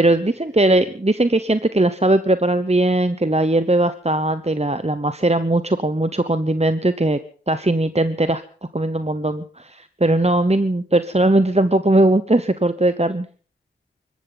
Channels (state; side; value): normal; both; correlation 0.68